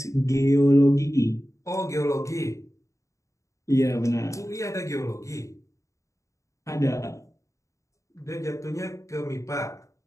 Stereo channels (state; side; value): late; right; 0.15 ms